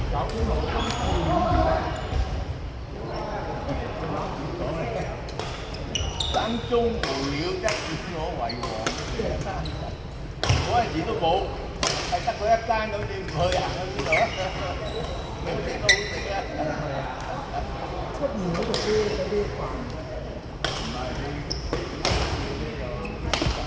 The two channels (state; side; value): identical; both; correlation 1.00